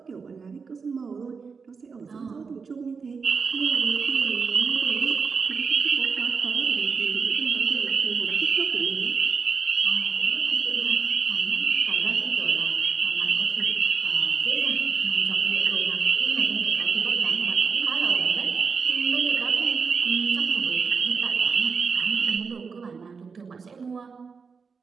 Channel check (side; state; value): left; quieter; 5.3 dB